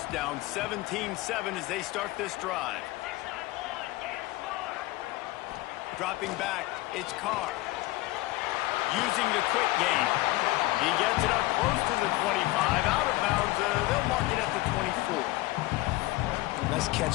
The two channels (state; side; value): quieter; right; 19.0 dB